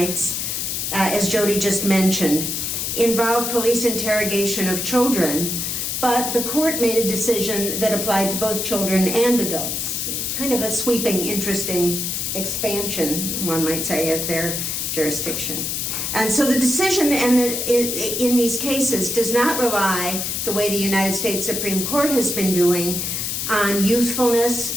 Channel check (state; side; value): noise; left; hiss, 2 dB below the sound